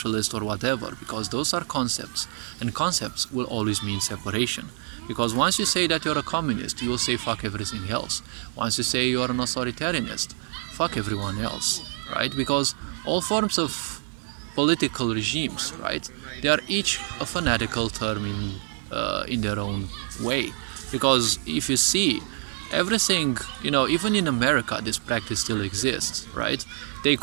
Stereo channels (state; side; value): silent; left; 56 dB below the other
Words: or whatever, because those are concepts, and concepts will always mean separation. Because once you say that you're a communist, you will say fuck everything else. Once you say you're an authoritarianist, fuck everyone else, right? Because all forms of political regimes, right, they are each a fanatical term in their own way. Because if you see, everything, even in America, this practice still exists, right? They